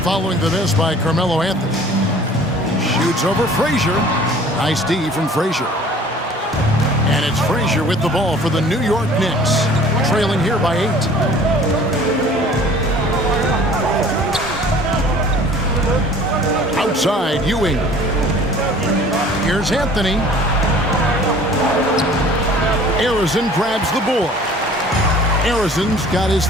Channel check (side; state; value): both; normal; correlation 0.49